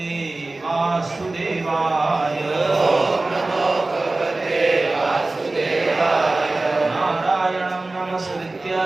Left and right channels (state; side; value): quieter; left; 3.1 dB